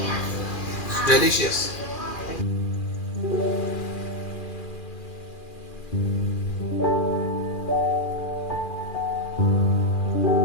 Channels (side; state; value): right; late; 2.4 ms